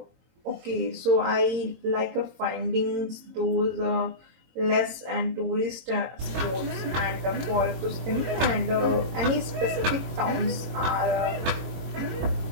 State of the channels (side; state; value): left; late; 22 ms